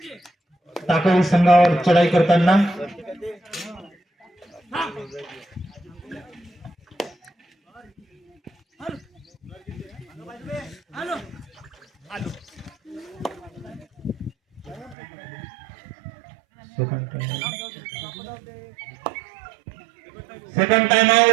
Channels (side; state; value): left; drops out; at 15.0 s